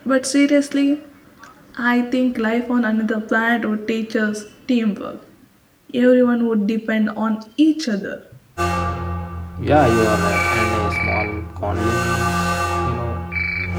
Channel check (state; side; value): identical; both; correlation 1.00